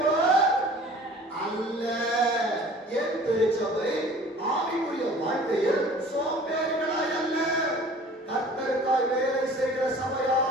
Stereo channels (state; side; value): normal; both; correlation 0.47